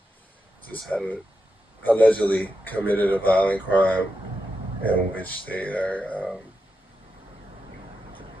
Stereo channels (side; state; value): both; normal; correlation 0.87